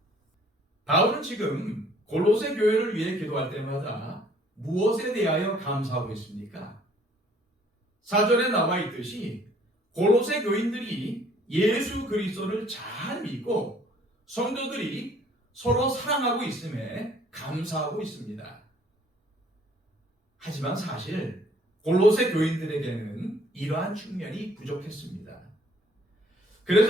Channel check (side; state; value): both; normal; correlation 0.59